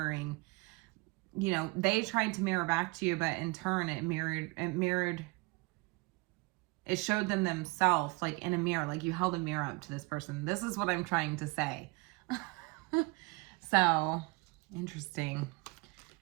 you know, they tried to mirror back to you, but in turn it showed them themselves like in a mirror, like you held a mirror up to this person. This is what I'm trying to say. So, interesting.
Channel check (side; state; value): left; quieter; 26.1 dB